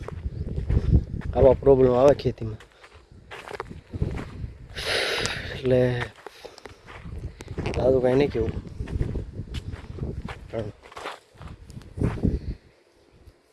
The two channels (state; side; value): identical; both; correlation 1.00